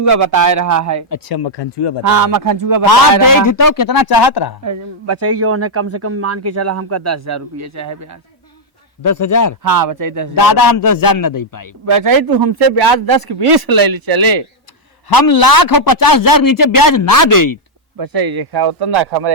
बताए रहा है। अच्छा मखनचूगा बता। हाँ मखनचूगा बताए रहा। देख तो कितना चाहत रहा? बचाई जो है कम से कम मान के चला हमका 10,000 रुपया चाहे ब्याज। 10,000? हाँ बचाई 10,000। दादा हम 10,000 न दे पाए। बचाई तू हमसे ब्याज 10 के 20 ले चले। हम 1,50,000 नीचे ब्याज ना दे। बचाई देखा उतना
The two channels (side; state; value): both; normal; correlation -0.02